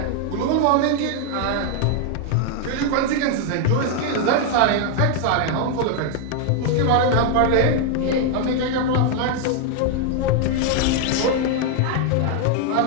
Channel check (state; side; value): different; both; correlation 0.00